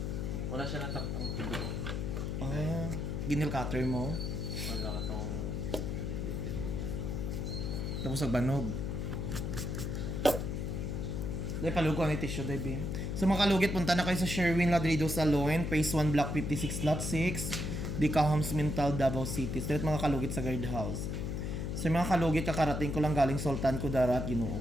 Wala siya natang-tang tubo. Ah, ginil cutter mo. Wala ka tong 50-50. Tapos nagbanog. Dahil palugo ang tissue, dahil Bim. So mga kalugit, punta na kayo sa Sherwin Ladrido Salon, Phase 1, Block 56, Lot 6, Dicahams, Mintal, Davao City. Straight mga kalugit sa guardhouse. So mga kalugit, kakarating ko lang galing Sultan Kudarat. Ginoo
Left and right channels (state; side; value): noise; left; hum, 2 dB below the sound